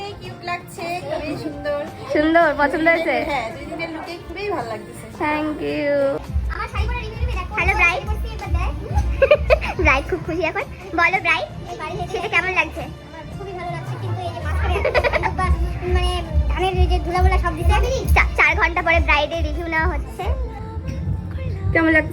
কিউট লাগছে, খুবই সুন্দর। সুন্দর, পছন্দ হয়েছে? হ্যাঁ, দুই দিনের লুকে খুবই ভালো লাগতেছে। Thank you. আমার শাড়ি পরে রিভিউ দিবি দেখো। হ্যালো ব্রাইড, ব্রাইড খুব খুশি এখন। বলো ব্রাইড, সেটা কেমন লাগছে? আমার খুবই ভালো লাগছে, কিন্তু এই যে মাঝখানে মানে ধানের যে ধুলাগুলা সব দিতে 4 ঘন্টা পরে ব্রাইডের রিভিউ নেওয়া হচ্ছে। কেমন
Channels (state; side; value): identical; both; correlation 1.00